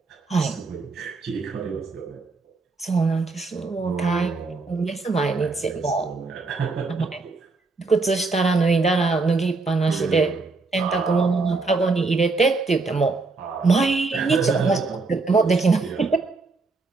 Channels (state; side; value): quieter; left; 3.8 dB